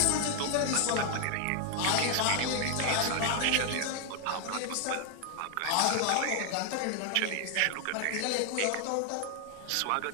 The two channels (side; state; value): both; different; correlation 0.00